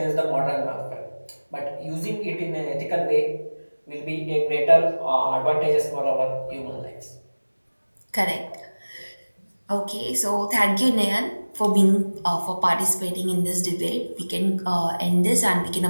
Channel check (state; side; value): inverted; both; correlation -1.00